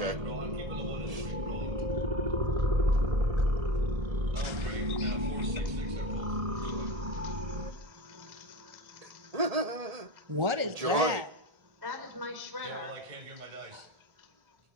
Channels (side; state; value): left; late; 1.7 ms